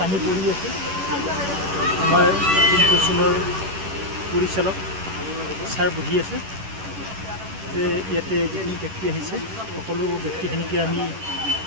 পৰি আছে। আমাৰ টীম ফৰচুনৰ পৰিচালক ছাৰ বহি আছে যে ইয়াতে যিখিনি ব্যক্তি আহিছে সকলো ব্যক্তিখিনিকে আমি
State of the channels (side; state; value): left; late; 11 ms